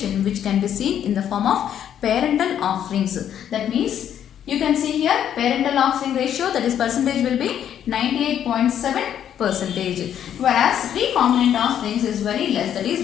which can be seen in the form of parental offsprings. That means you can see here parental offspring ratio, that is percentage will be 98.7 percentage, whereas recombinant offsprings is very less, that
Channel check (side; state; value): right; quieter; 9.8 dB